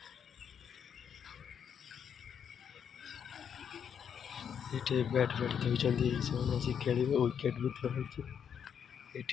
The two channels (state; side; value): quieter; right; 7.9 dB